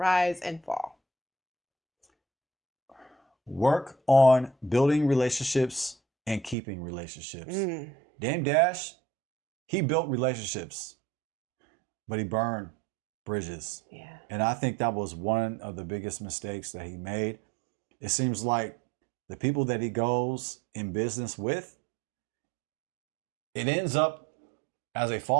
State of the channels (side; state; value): left; drops out; at 6.6 s